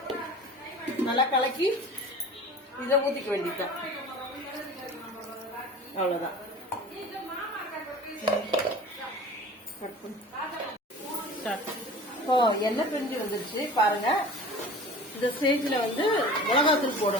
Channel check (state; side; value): normal; both; correlation 0.40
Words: நல்லா கலக்கி இதை ஊத்திக்க வேண்டியதுதான். அவ்வளவுதான். எண்ணெய் பிரிஞ்சு வந்துருச்சு பாருங்க. இந்த ஸ்டேஜ்ல வந்து மிளகாத்தூள்